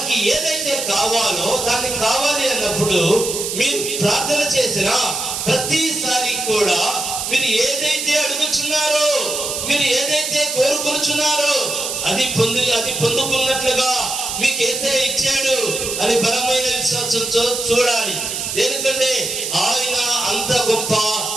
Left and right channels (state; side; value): noise; right; hiss, 4 dB below the sound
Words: ఏదైతే కావాలో దాన్ని కావాలి అన్నప్పుడు మీరు ప్రార్థన చేసిన ప్రతిసారి కూడా మీరు ఏదైతే అడుగుచున్నారో, మీరు ఏదైతే కోరుకుంటున్నారో అది పొందుకున్నట్లుగా మీకు యేసయ్య ఇచ్చాడు అని బలమైన విశ్వాసంతో చూడాలి. ఎందుకంటే ఆయన అంత గొప్ప